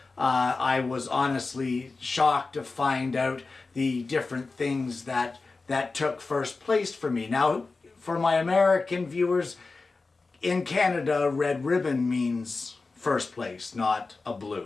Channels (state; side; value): quieter; right; 3.9 dB